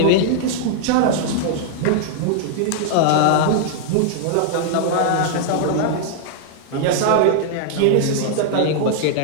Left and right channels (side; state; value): both; different; correlation -0.01